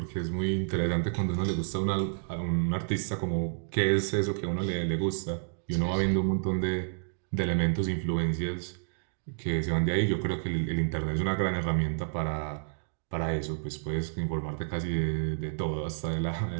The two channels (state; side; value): silent; left; digital silence